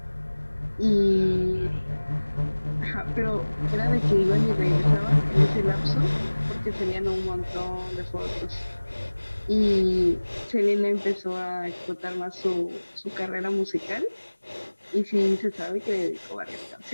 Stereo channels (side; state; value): both; inverted; correlation -1.00